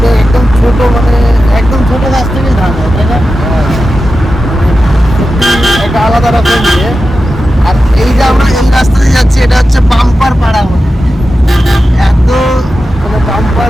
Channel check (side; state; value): both; normal; correlation 0.92